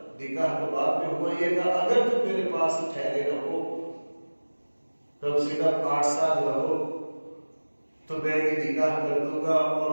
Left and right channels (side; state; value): both; inverted; correlation -1.00